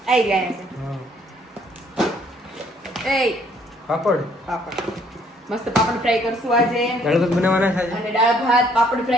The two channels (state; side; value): normal; both; correlation 0.64